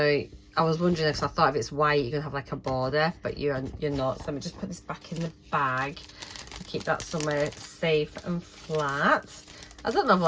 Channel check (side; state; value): both; identical; correlation 1.00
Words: I was wondering, if I thought if it's white you're gonna have like a border, but you're not. So let me just put this back in the bag and keep that somewhere safe and flat. I don't know if